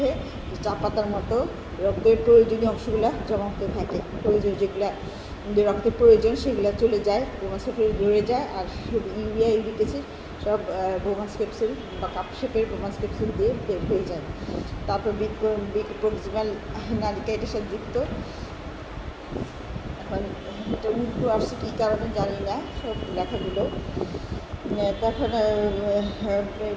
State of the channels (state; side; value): identical; both; correlation 1.00